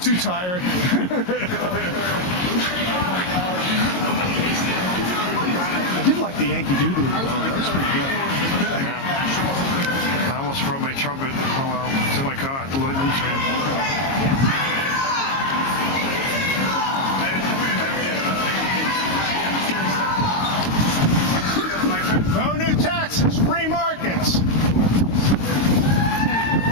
Too tired. I did like the Yankee Doodle. That was pretty good. Yeah. I almost brought my trumpet. Oh well, to my car. The Lloyd Lee train. No new taxes, free markets.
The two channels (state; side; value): late; right; 22 ms